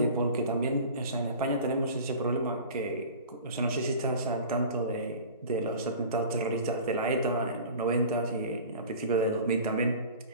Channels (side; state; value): both; inverted; correlation -0.40